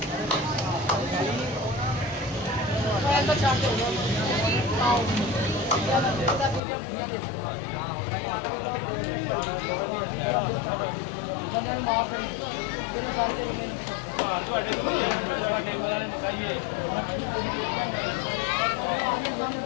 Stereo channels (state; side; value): drops out; right; at 6.6 s